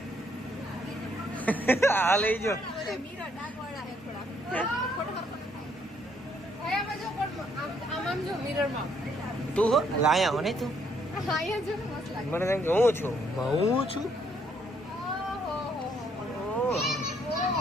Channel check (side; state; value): both; normal; correlation 0.69